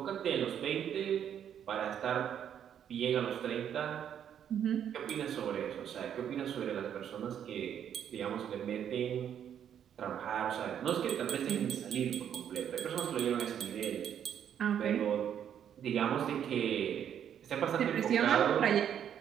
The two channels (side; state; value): left; quieter; 9.2 dB